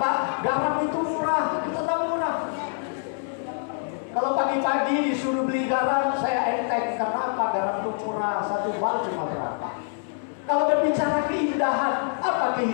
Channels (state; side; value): silent; right; 61 dB below the other